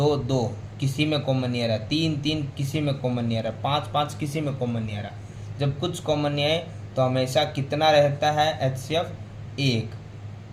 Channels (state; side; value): identical; both; correlation 1.00